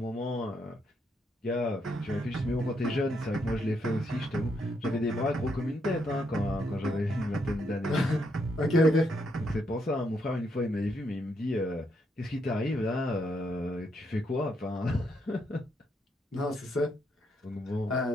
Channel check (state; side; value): normal; both; correlation 0.77